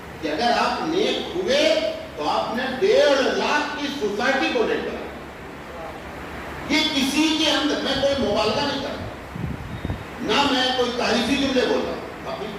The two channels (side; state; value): both; identical; correlation 1.00